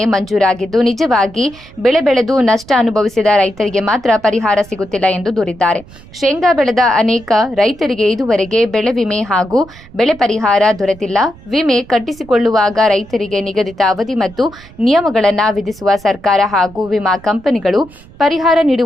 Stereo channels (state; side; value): noise; right; rumble, 21 dB below the sound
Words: ಮಂಜೂರಾಗಿದ್ದು, ನಿಜವಾಗಿ ಬೆಳೆ ಬೆಳೆದು ನಷ್ಟ ಅನುಭವಿಸಿದ ರೈತರಿಗೆ ಮಾತ್ರ ಪರಿಹಾರ ಸಿಗುತ್ತಿಲ್ಲ ಎಂದು ದೂರಿದ್ದಾರೆ. ಶೇಂಗಾ ಬೆಳೆದ ಅನೇಕ ರೈತರಿಗೆ ಇದುವರೆಗೆ ಬೆಳೆ ವಿಮೆ ಹಾಗೂ ಬೆಳೆ ಪರಿಹಾರ ದೊರೆತಿಲ್ಲ. ವಿಮೆ ಕಟ್ಟಿಸಿಕೊಳ್ಳುವಾಗ ರೈತರಿಗೆ ನಿಗದಿತ ಅವಧಿ ಮತ್ತು ನಿಯಮಗಳನ್ನು ವಿಧಿಸುವ ಸರ್ಕಾರ ಹಾಗೂ ವಿಮಾ ಕಂಪನಿಗಳು ಪರಿಹಾರ